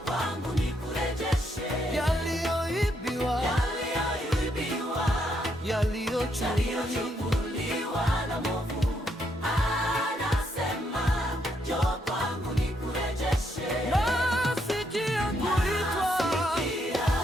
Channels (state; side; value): normal; both; correlation 0.76